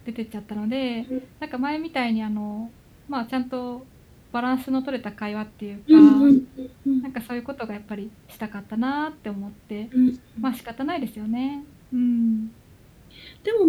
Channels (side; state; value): both; identical; correlation 1.00